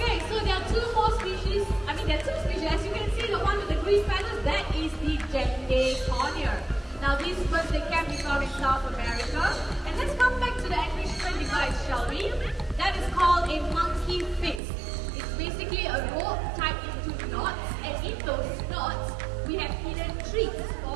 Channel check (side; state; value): left; drops out; at 14.6 s